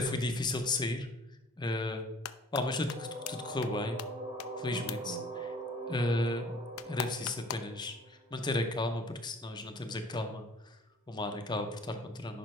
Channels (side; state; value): both; normal; correlation 0.51